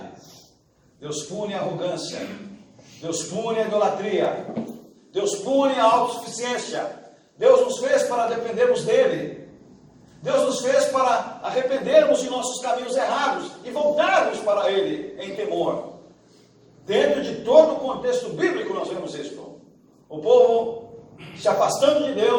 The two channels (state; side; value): identical; both; correlation 1.00